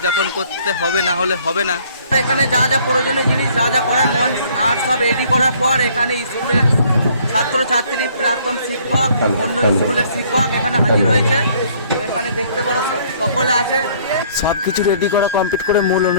করতে হবে, না হলে হবে না। এখানে যা যা প্রয়োজনীয় জিনিস যা যা করার মঞ্চ আর সব রেডি করার পর এখানে স্কুলের ছাত্রছাত্রী, প্রাক্তন শিক্ষক, অন্য স্কুলের শিক্ষক এখানে হাজির হয়েছে। তো এখানে দেখতে পারো সকলে আছে। সব কিছু রেডি করা কমপ্লিট করে মূল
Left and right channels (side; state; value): both; inverted; correlation -0.60